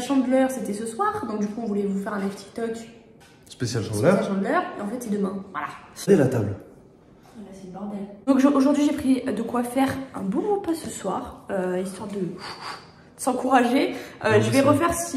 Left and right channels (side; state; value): both; identical; correlation 1.00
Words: c'était ce soir, donc du coup on voulait vous faire un live TikTok spécial chandeleur. Et en fait c'est demain, voilà. C'est la table. Là c'est le bordel. Donc aujourd'hui j'ai pris de quoi faire un bon repas ce soir, histoire de s'encourager. Je vais refaire,